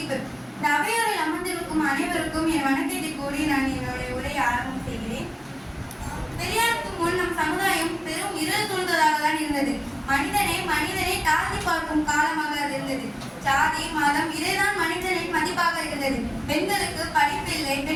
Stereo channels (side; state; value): both; identical; correlation 1.00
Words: இந்த அவையோரில் அமர்ந்திருக்கும் அனைவருக்கும் என் வணக்கத்தை கூறி நான் என்னுடைய உரையை ஆரம்பம் செய்கிறேன். பெரியாருக்கு முன் நம் சமுதாயம் பெரும் இருள் சூழ்ந்ததாக தான் இருந்தது. மனிதனை தாழ்த்தி பார்க்கும் காலமாக அது இருந்தது. ஜாதி மதம் இதைதான் மனிதனின் மதிப்பாக இருந்தது. பெண்களுக்கு படிப்பு இல்லை,